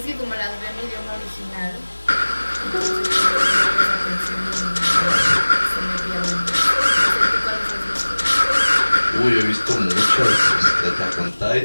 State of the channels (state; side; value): inverted; both; correlation -1.00